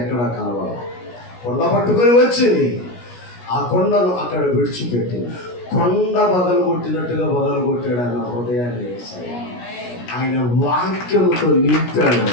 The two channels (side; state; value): right; late; 17 ms